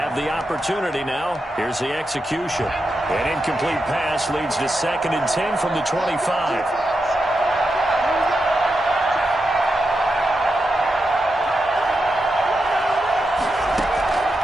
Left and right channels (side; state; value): both; normal; correlation 0.87